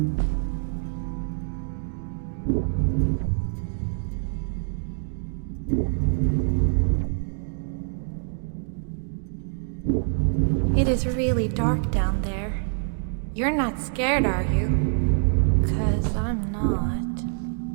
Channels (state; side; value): silent; left; digital silence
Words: It is really dark down there. You're not scared, are you? 'Cause I'm not.